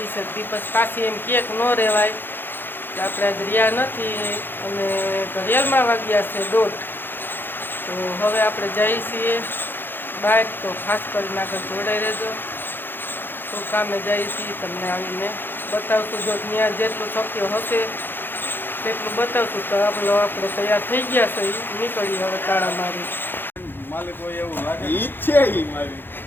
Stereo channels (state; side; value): late; right; 0.099 ms